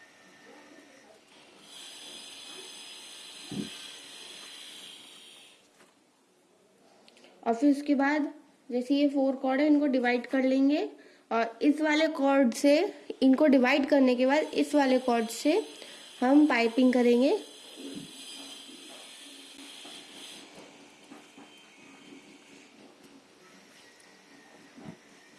और फिर उसके बाद जैसे ये 4 कॉर्ड है इनको डिवाइड कर लेंगे और इस वाले कॉर्ड से, इनको डिवाइड करने के बाद इस वाले कॉर्ड से हम पाइपिंग करेंगे।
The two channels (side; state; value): both; identical; correlation 1.00